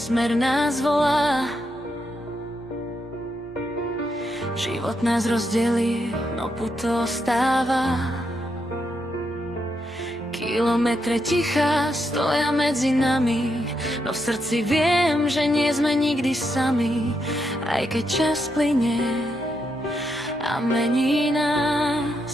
nás volá. Život nás rozdelí, no puto ostáva. Kilometre ticha stoja medzi nami, no v srdci viem, že nie sme nikdy sami. Aj keď čas plynie a mení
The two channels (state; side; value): normal; both; correlation 0.81